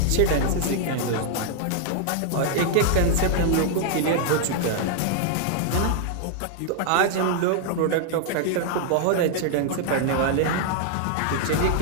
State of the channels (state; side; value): different; both; correlation 0.00